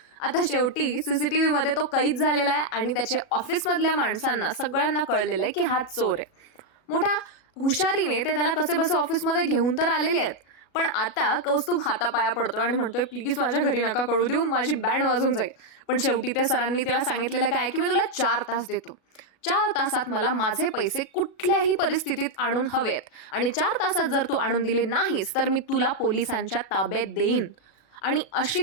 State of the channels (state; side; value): late; right; 37 ms